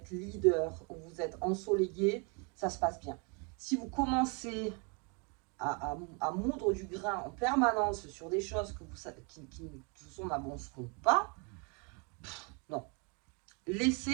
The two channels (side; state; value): left; quieter; 34.0 dB